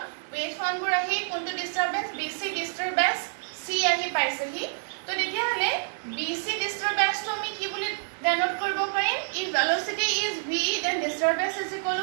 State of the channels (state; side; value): silent; left; 60 dB below the other